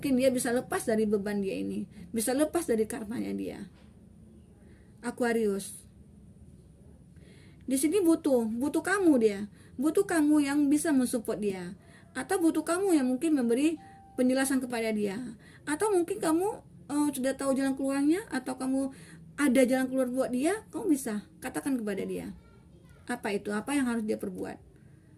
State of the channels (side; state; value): both; identical; correlation 1.00